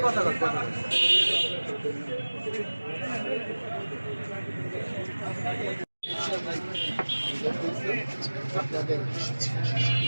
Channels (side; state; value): both; inverted; correlation -1.00